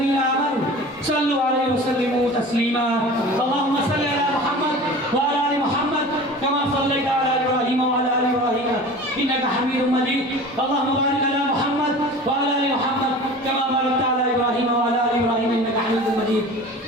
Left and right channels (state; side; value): normal; both; correlation 0.38